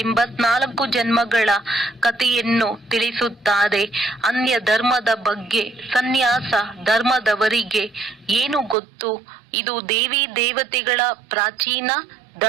84 ಜನ್ಮಗಳ ಕಥೆಯನ್ನು ತಿಳಿಸುತ್ತಾರೆ. ಅನ್ಯ ಧರ್ಮದ ಬಗ್ಗೆ ಸನ್ಯಾಸ ಧರ್ಮದವರಿಗೆ ಏನು ಗೊತ್ತು? ಇದು ದೇವಿ ದೇವತೆಗಳ ಪ್ರಾಚೀನ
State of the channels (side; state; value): left; drops out; at 8.8 s